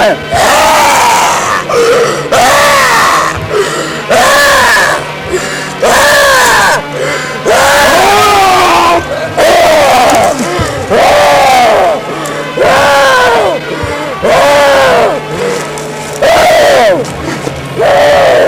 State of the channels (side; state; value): both; identical; correlation 1.00